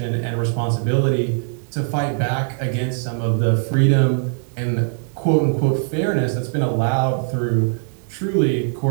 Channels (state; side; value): silent; left; 65 dB below the other